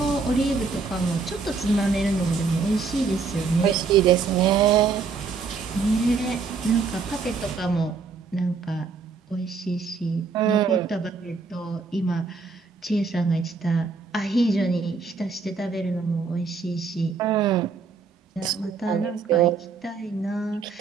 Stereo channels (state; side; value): quieter; left; 4.8 dB